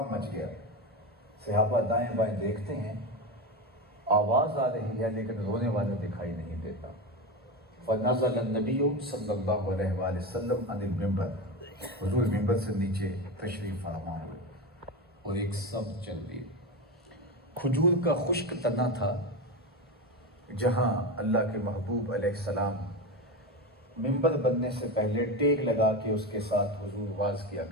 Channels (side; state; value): both; normal; correlation 0.18